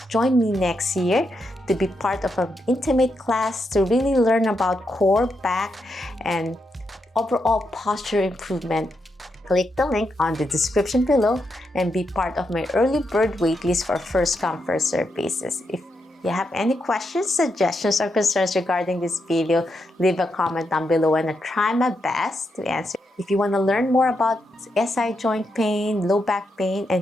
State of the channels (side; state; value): both; normal; correlation 0.83